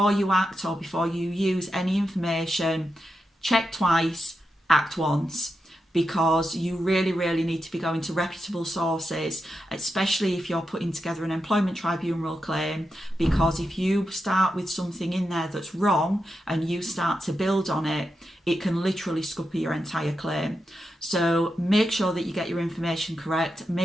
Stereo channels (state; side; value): normal; both; correlation 0.87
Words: you act or before you use any information, check twice, act once, because you really, really need to be going to reputable sources, especially if you're putting together an employment tribunal claim, because if you start with something in there that's wrong and you start to build on it, it can literally scupper your entire claim. So make sure that you get your information correct,